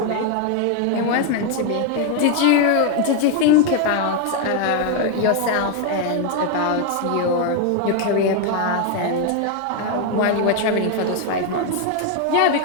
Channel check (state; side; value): different; both; correlation 0.01